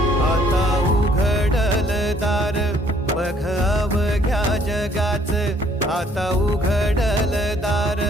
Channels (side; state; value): both; normal; correlation 0.63